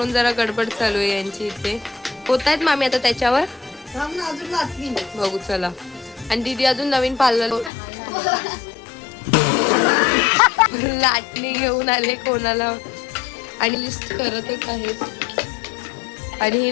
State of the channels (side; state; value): right; drops out; at 7.7 s